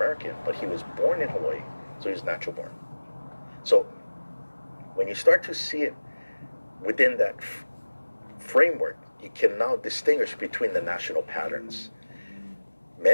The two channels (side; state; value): both; inverted; correlation -1.00